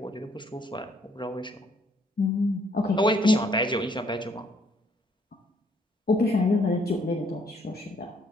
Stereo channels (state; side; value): normal; both; correlation 0.67